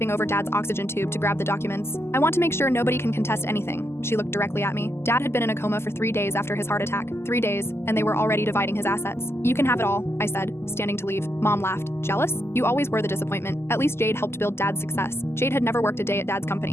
over Dad's oxygen tube to grab the documents. I want to make sure nobody can contest anything. She looked directly at me. Dad had been in a coma for 3 days after his heart attack. 3 days, and they were already dividing his assets. You can have it all, I said, standing to leave. Mom laughed. Jealous? You always were the disappointment. At least Jade helped build Dad's success. Jade had never worked a day at Dad's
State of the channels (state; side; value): late; right; 0.12 ms